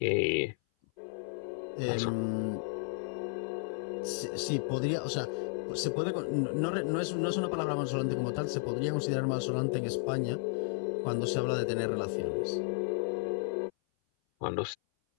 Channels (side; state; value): right; silent; 56 dB below the other